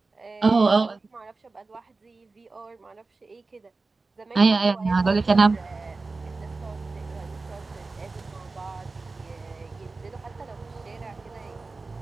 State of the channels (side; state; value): left; quieter; 3.7 dB